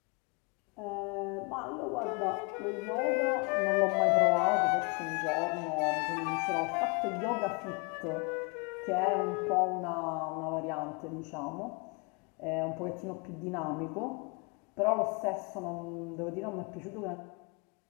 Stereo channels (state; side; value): quieter; right; 32.2 dB